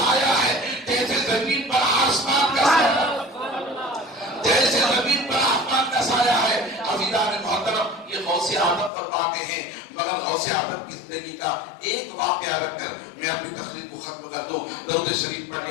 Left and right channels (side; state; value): right; drops out; at 8.9 s